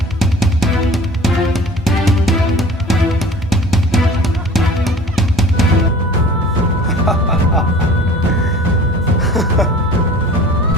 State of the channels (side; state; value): both; normal; correlation 0.45